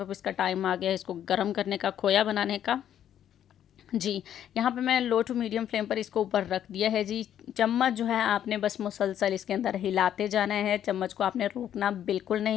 इसका टाइम आ गया है इसको गर्म करने का, खोया बनाने का जी। यहाँ पे मैं लो टू मीडियम फ्लेम पर इसको ऊपर रख दिया है जी। चम्मच जो है आपने बस मुसलसल इसके अंदर हिलाते जाना है, चम्मच को आपने रोकना बिल्कुल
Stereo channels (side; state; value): right; quieter; 10.3 dB